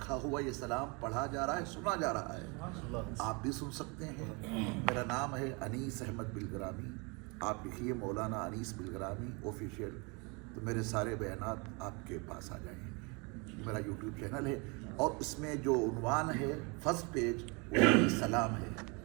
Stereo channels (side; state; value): left; quieter; 30.4 dB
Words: ہوا یہ سلام پڑھا جا رہا ہے، سنا جا رہا ہے، آپ بھی سن سکتے ہیں۔ میرا نام ہے انیس احمد بلگرامی، آپ لکھیے مولانا انیس بلگرامی آفیشیل، تو میرے سارے بیانات آپ کے پاس آ جائیں گے۔ میرا یوٹیوب چینل ہے اور اس میں جو عنوان ہے فرسٹ پیج وہ سلام ہے۔